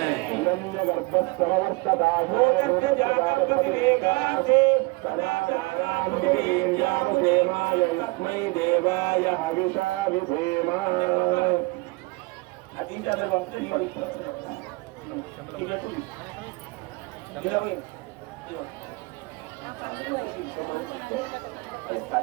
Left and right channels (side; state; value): left; quieter; 25.5 dB